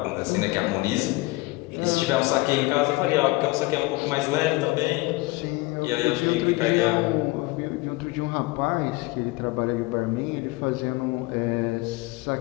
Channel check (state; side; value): quieter; right; 22.1 dB